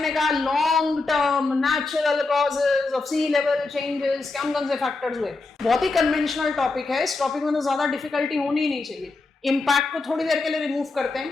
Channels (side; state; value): right; quieter; 3.6 dB